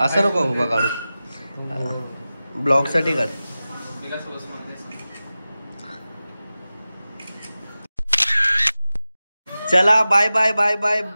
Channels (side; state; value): both; inverted; correlation -0.95